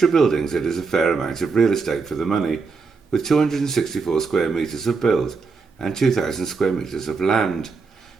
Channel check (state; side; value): quieter; left; 4.7 dB